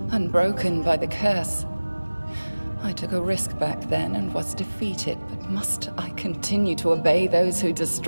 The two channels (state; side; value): inverted; both; correlation -1.00